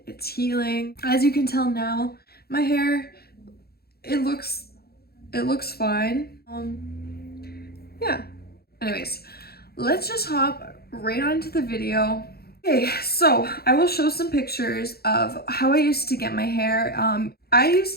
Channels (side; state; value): right; late; 0.46 ms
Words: its healing. As you can tell now, my hair, it looks fine. Yeah. Anyways, let's just hop right on into the video. Okay, so I will show some pictures of how I used to get my hair. I